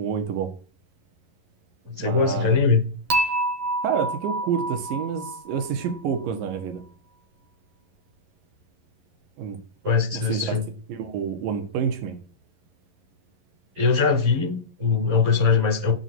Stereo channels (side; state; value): left; late; 11 ms